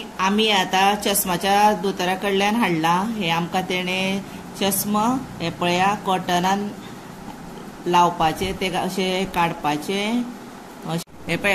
आमी आतां चश्माच्या दोतोरा कडल्यान हाडला हे आमकां तेणे चश्मा हे पळया कॉटनान लावपाचे ते अशे काडपाचे। हे पळय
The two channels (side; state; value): both; identical; correlation 1.00